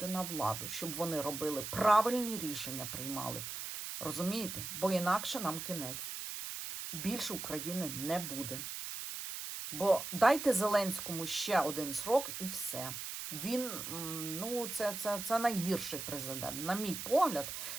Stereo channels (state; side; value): noise; right; hiss, 6 dB below the sound